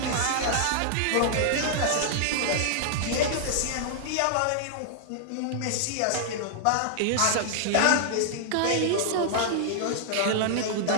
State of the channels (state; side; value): different; both; correlation -0.01